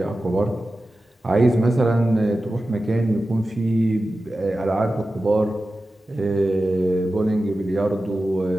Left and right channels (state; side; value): normal; both; correlation 0.94